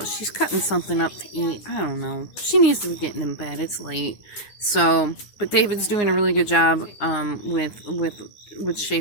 She's cutting something up to eat. I don't know. She needs to be getting in bed. It's late. So, but David's doing a really good job with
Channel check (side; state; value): right; late; 9.6 ms